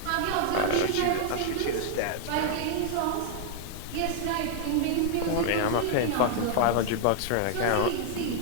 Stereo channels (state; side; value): different; both; correlation 0.00